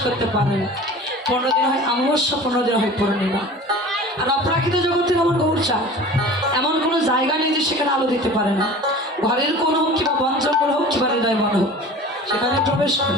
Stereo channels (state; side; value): normal; both; correlation 0.40